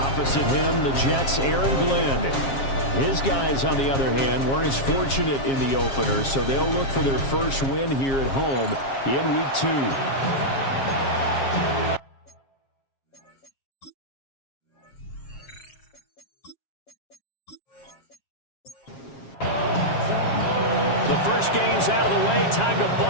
him, the Jets' Aaron Glenn. His guys, on the other hand, weren't as fortunate in the opener, so they'll look for their first win here at home in week 2. The first game's out of the way. Time to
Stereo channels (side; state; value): right; late; 7.4 ms